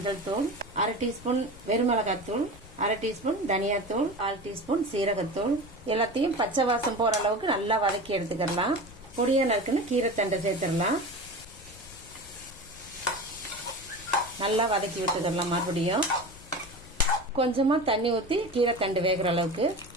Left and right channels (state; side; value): noise; left; rumble, 19 dB below the sound